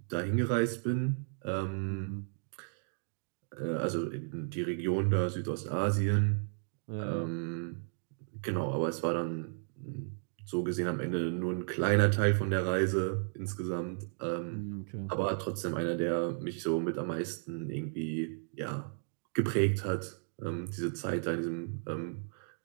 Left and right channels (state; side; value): silent; left; digital silence